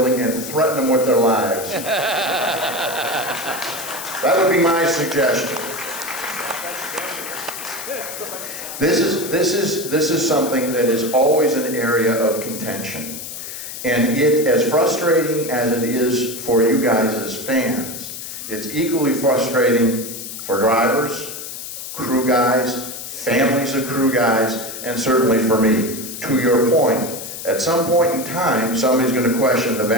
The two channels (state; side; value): noise; left; hiss, 9 dB below the sound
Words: and threaten them with their lives. That would be my suggestion. This is something that is always an area of contention. And as frustrating as it is for you guys as fans, it's equally frustrating for drivers, crew guys, families of crew guys, and certainly for me. To your point, at some point in time, somebody's going to question the